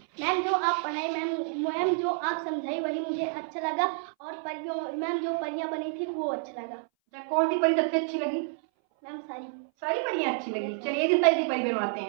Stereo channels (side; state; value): left; silent; 59 dB below the other